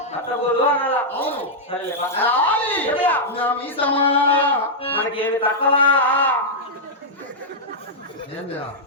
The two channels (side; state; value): both; normal; correlation -0.06